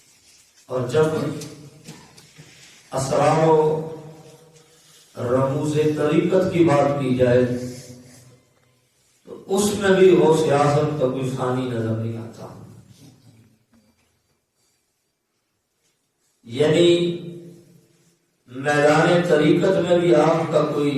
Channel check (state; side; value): identical; both; correlation 1.00